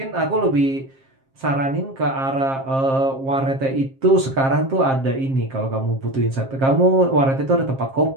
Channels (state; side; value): late; left; 7.5 ms